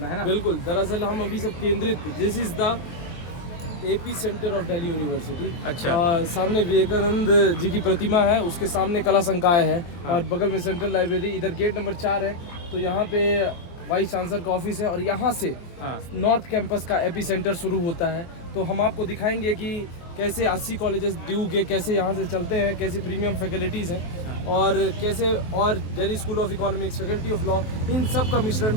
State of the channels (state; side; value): late; right; 23 ms